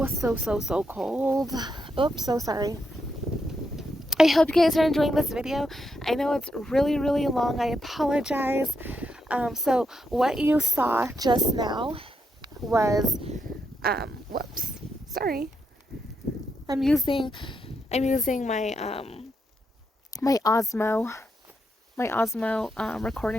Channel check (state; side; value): normal; both; correlation 0.81